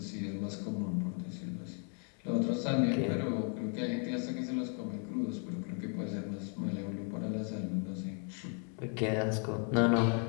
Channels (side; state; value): right; quieter; 39.4 dB